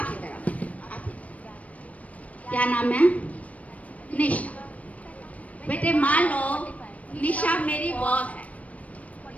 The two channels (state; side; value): late; right; 0.068 ms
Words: क्या नाम है? निशा। बेटे मान लो निशा मेरी बॉस है।